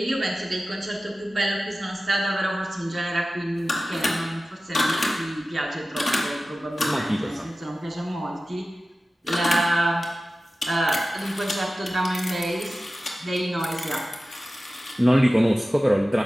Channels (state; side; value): normal; both; correlation 0.95